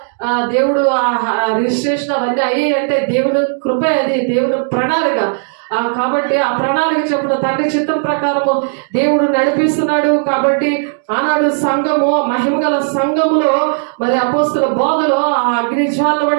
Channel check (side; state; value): left; silent; digital silence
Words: దేవుడు రిజిస్ట్రేషన్ అవన్నీ అయ్యాయి అంటే దేవుని కృప, అది దేవుని ప్రణాళిక. కాబట్టి ఆ ప్రణాళిక చెప్పిన తండ్రి చిత్తం ప్రకారము దేవుడు నడిపిస్తున్నాడు. కాబట్టి ఆనాడు సంఘము మహిమగల సంఘములో మరి అపోస్తుల బోధలో ఆ అగ్నిజ్వాల